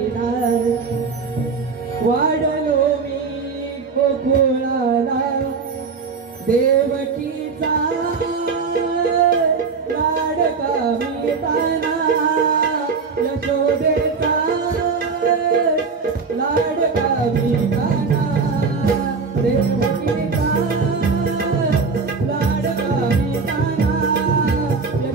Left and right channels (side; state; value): left; quieter; 4.9 dB